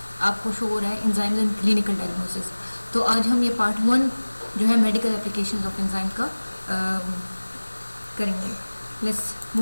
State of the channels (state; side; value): inverted; both; correlation -1.00